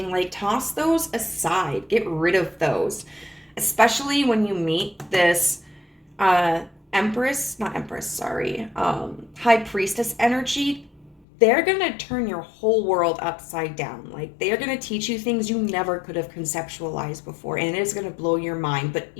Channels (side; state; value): right; drops out; at 11.2 s